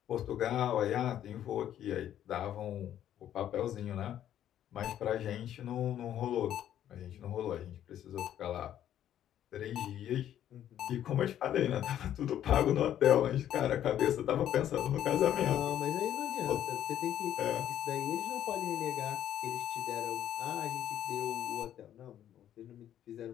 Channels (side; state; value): right; quieter; 11.0 dB